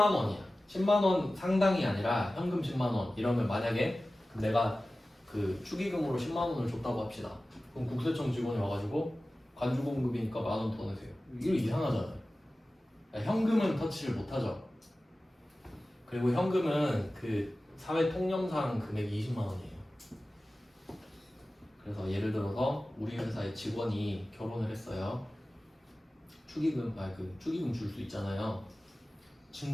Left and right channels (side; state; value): both; normal; correlation 0.96